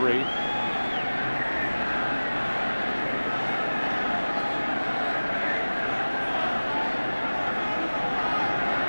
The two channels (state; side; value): inverted; both; correlation -1.00